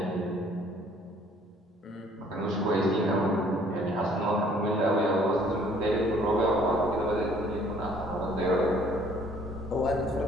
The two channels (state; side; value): normal; both; correlation 0.59